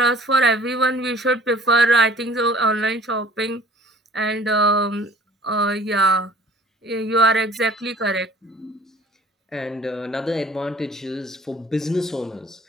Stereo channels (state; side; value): normal; both; correlation 0.53